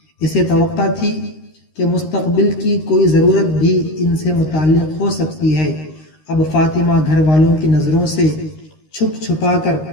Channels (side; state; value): right; late; 13 ms